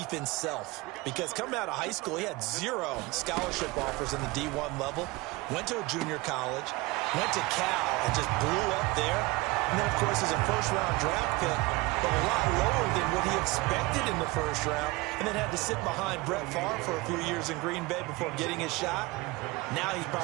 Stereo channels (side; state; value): left; quieter; 22.7 dB